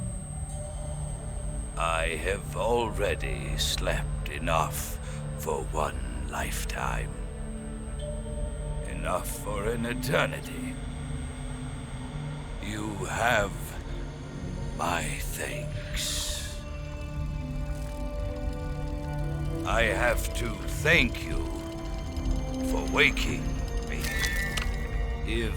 I have already slept enough for one lifetime. Enough for an eternity. You have my thanks. I have to thank you for waking me.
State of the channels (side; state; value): both; identical; correlation 1.00